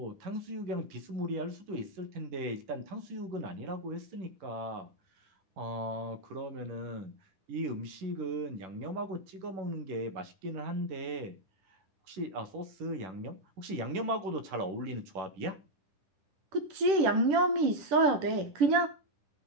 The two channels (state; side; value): late; left; 10 ms